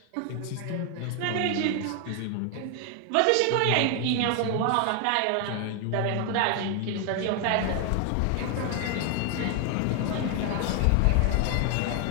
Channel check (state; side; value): different; both; correlation 0.00